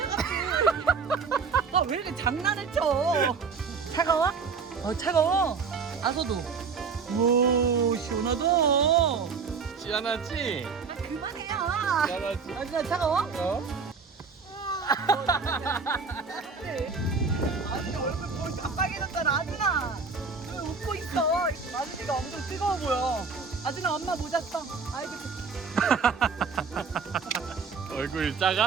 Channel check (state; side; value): quieter; left; 5.2 dB